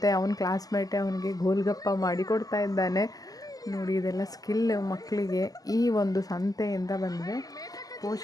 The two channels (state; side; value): late; right; 0.17 ms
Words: ಅವನ ಕ್ಲಾಸ್ಮೇಟೇ ಅವನಿಗೆ ಗೋಲ್ಗಪ್ಪ ಮಾಡಿ ಕೊಡ್ತಾ ಇದ್ದಾನೆ. ನೋಡಿ ಇದೆಲ್ಲ ಸ್ಕಿಲ್ ಮಕ್ಕಳಿಗೆ ಈ ಒಂದು ಸಂತೆಯಿಂದ ಬಂದಿದೆ.